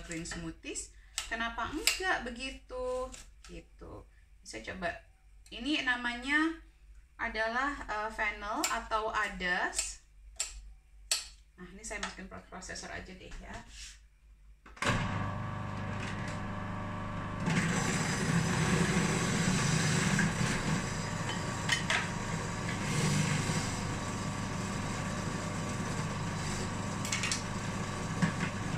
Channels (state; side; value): identical; both; correlation 1.00